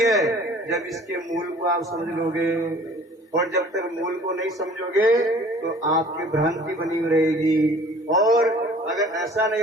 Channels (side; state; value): both; normal; correlation 0.50